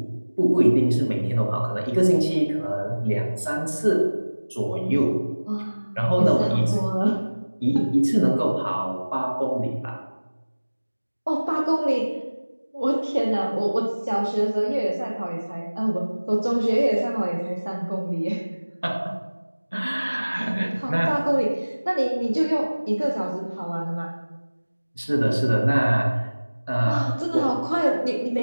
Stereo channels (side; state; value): both; inverted; correlation -1.00